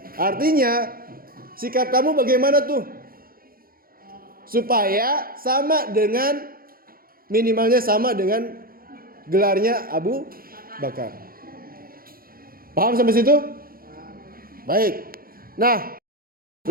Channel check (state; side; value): late; left; 0.42 ms